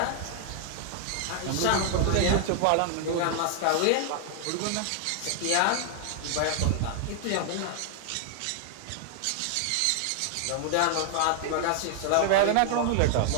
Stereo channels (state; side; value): different; both; correlation 0.00